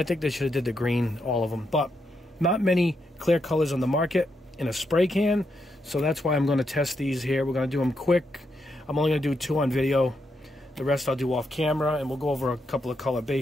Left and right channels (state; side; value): normal; both; correlation 0.81